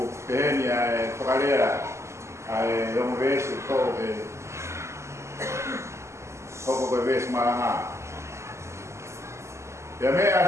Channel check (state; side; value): late; left; 0.13 ms